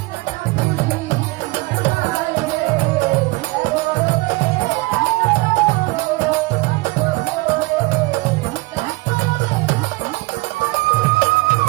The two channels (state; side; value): quieter; left; 24.4 dB